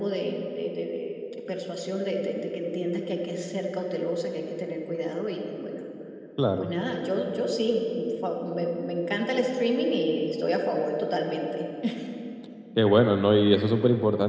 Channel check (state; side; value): identical; both; correlation 1.00